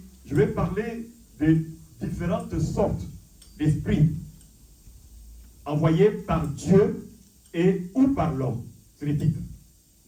je vais parler des différentes sortes d'esprits envoyés par Dieu et ou par l'homme. C'est le titre.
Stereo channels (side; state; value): both; identical; correlation 1.00